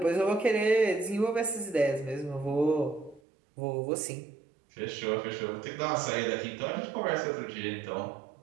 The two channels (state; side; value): drops out; left; at 3.2 s